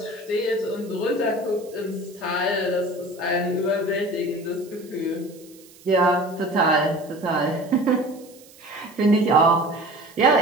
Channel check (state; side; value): noise; right; hiss, 24 dB below the sound